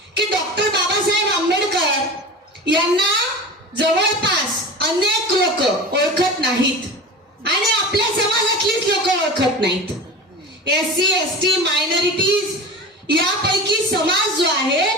की डॉक्टर बाबासाहेब आंबेडकर यांना जवळपास अनेक लोक ओळखत नाहीत आणि आपल्या समाजातलीच लोक ओळखत नाहीत. SC ST मायनॉरिटीज यापैकी समाज जो आहे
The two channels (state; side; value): normal; both; correlation 0.32